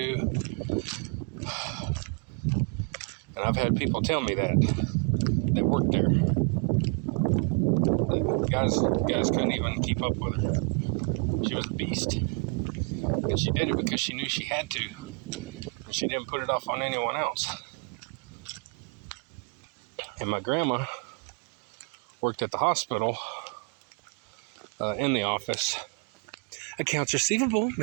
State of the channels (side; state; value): left; quieter; 37.0 dB